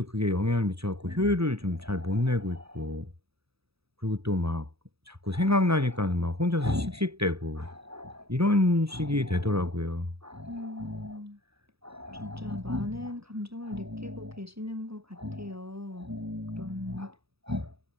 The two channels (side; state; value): left; late; 0.77 ms